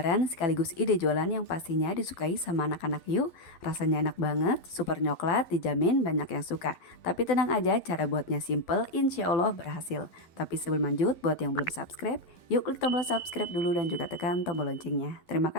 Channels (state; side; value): late; right; 12 ms